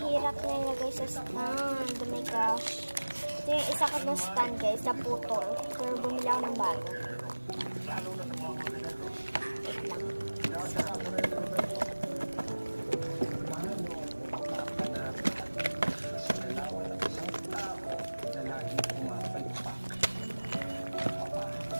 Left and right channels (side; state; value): both; inverted; correlation -1.00